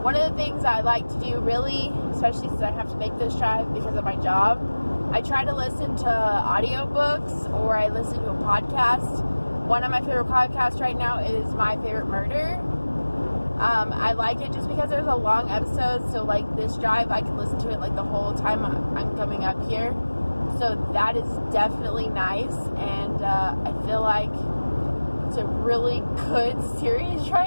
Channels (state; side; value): inverted; both; correlation -1.00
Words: One of the things I like to do, really, especially since I have to make this drive because of my job, I try to listen to audiobooks or I listen to a podcast. One of my favorite podcasts right now is My Favorite Murder. I like it just because there's a long episode, so like this drive, I can listen to it like the whole time I'm coming up here. So that is definitely nice, and I feel like it's a really good series